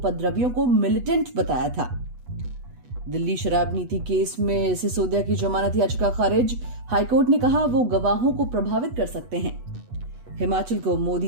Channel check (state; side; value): late; left; 8.1 ms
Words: को मिलिटेंट बताया था। दिल्ली शराब नीति केस में सिसोदिया की जमानत याचिका खारिज। हाईकोर्ट ने कहा वो गवाहों को प्रभावित कर सकते हैं। हिमाचल को